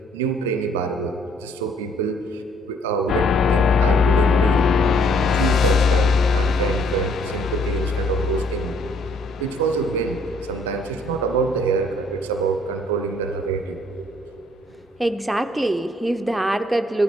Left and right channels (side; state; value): both; normal; correlation 0.64